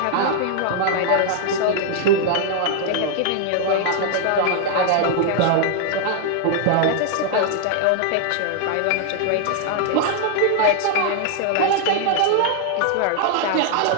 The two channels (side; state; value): both; different; correlation 0.00